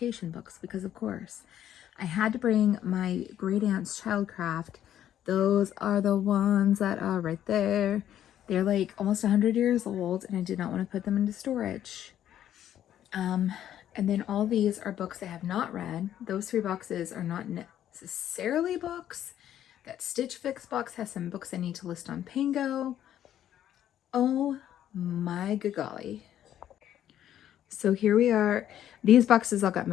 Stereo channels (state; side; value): quieter; right; 11.1 dB